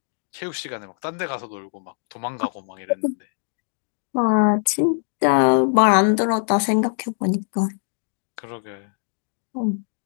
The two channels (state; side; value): silent; right; digital silence